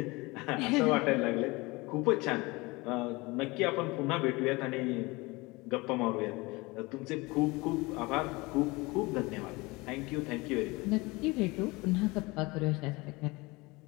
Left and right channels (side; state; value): right; quieter; 23.7 dB